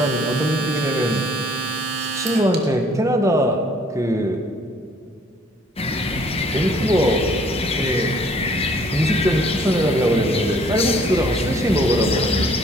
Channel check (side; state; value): both; normal; correlation 0.59